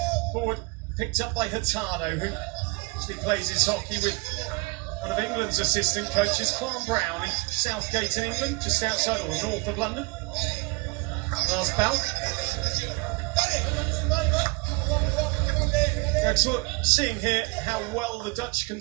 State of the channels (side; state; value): left; quieter; 27.2 dB